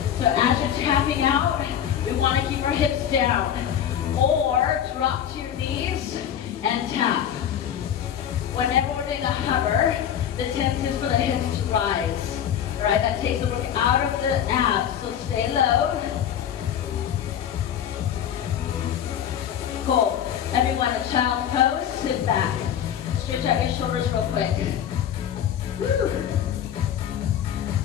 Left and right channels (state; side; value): quieter; right; 9.6 dB